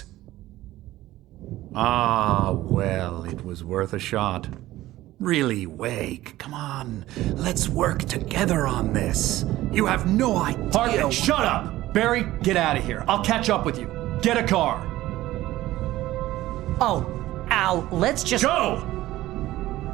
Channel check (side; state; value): left; quieter; 15.9 dB